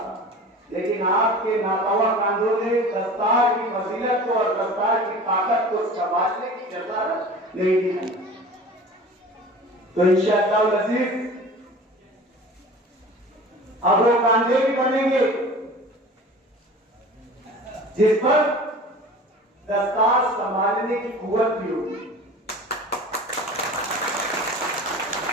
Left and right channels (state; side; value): normal; both; correlation 0.39